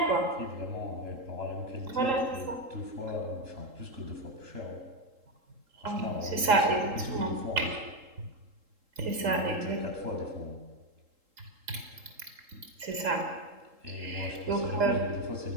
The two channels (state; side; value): late; left; 3.7 ms